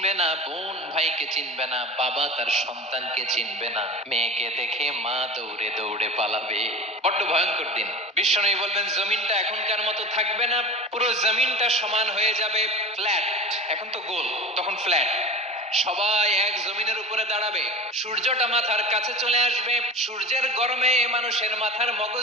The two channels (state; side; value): normal; both; correlation 0.33